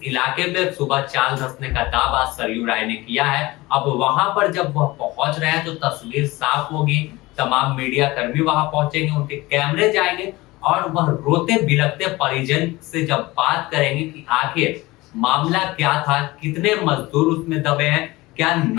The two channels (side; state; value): right; quieter; 20.6 dB